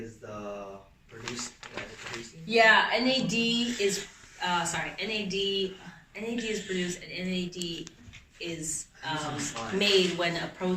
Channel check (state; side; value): identical; both; correlation 1.00